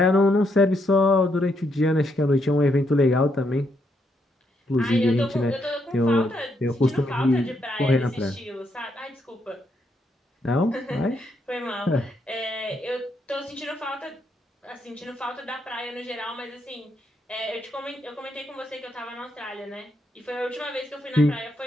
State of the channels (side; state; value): both; normal; correlation 0.77